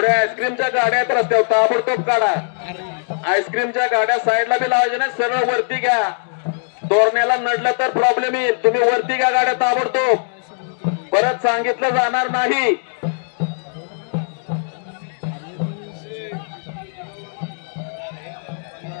आईस्क्रीमच्या गाड्या आहेत रस्त्यावर, ताबडतोब काढा. आईस्क्रीमच्या गाड्या साईडला बी लावायच्या नाही, सरळ वरती घ्या. तोरण्याला नडलं तर प्रॉब्लेम येईल. तुम्ही वरती घ्या गाड्या ताबडतोब, परत सांगितलं जाणार नाही.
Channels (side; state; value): right; silent; 66 dB below the other